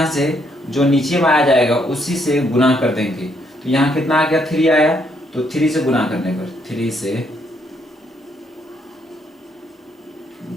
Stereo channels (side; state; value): both; normal; correlation 0.72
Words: से जो नीचे में आ जाएगा उसी से गुना कर देंगे। तो यहाँ कितना आ गया, 3 आया, तो 3 से गुना करने पर, 3 से